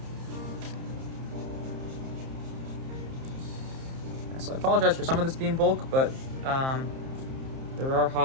So I apologize for some of this being bulk, but there are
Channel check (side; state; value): left; late; 30 ms